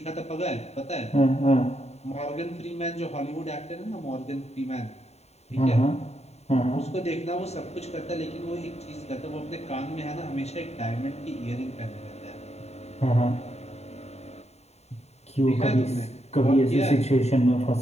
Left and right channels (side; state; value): right; late; 0.31 ms